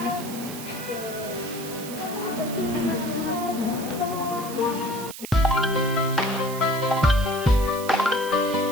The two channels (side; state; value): right; noise; hiss, 12 dB below the sound